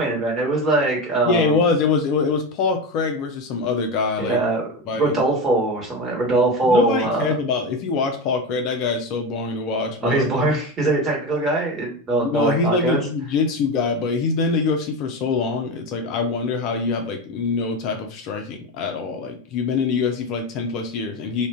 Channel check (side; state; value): both; normal; correlation 0.19